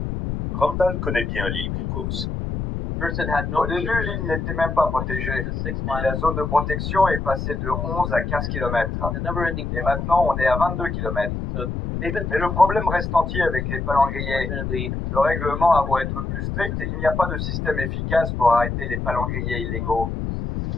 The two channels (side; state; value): left; noise; rumble, 3 dB below the sound